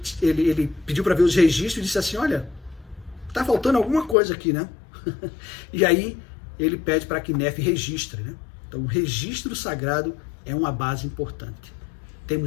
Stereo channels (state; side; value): drops out; right; at 4.2 s